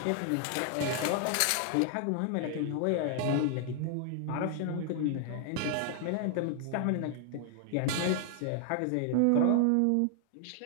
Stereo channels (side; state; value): both; different; correlation 0.00